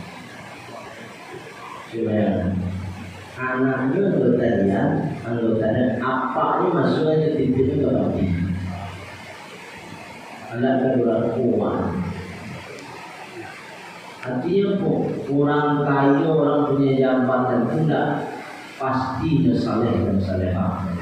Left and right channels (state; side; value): identical; both; correlation 1.00